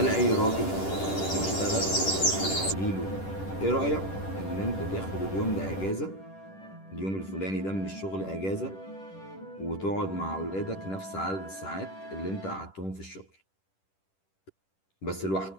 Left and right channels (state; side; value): late; right; 10 ms